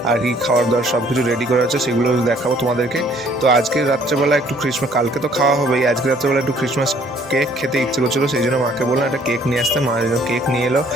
আর কি খাওয়ার দাওয়ার সব কিছু রেডি করা আছে সেগুলো দেখাবো তোমাদেরকে। তো আজকে রাত্রেবেলা একটু ক্রিসমাস, কালকে তো খাওয়া হবেই, আজকে রাত্রেবেলা একটু ক্রিসমাস কেক খেতে ইচ্ছে করছিলো, সেই জন্য মাকে বললাম একটা কেক নিয়ে আসতে। মা কেক নিয়ে এলো,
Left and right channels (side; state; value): both; normal; correlation 0.60